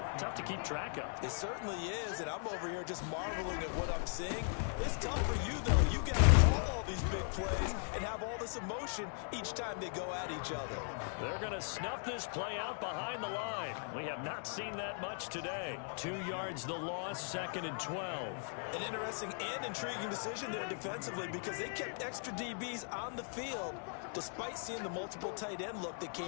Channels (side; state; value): right; silent; 52 dB below the other